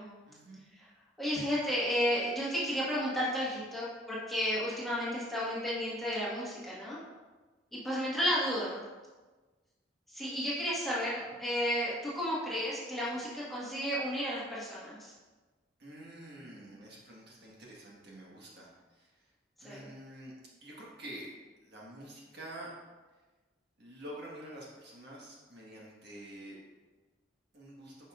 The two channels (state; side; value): normal; both; correlation 0.55